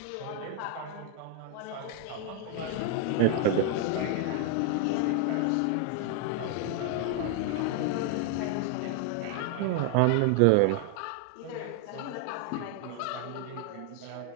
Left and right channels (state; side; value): different; both; correlation 0.01